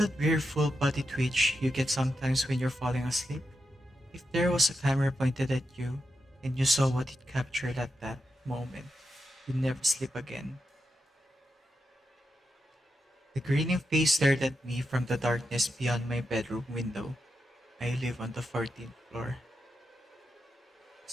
weird full body twitch you get sometimes when you're falling asleep? If there was a camera pointed at you, and you saw what it captured at that moment, you'd never sleep again. The grinning face stared at me from the darkness beyond my bedroom window. I live on the 14th floor.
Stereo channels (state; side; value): normal; both; correlation 0.87